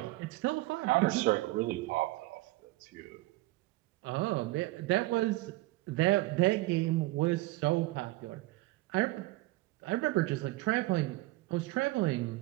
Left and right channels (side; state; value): left; quieter; 19.5 dB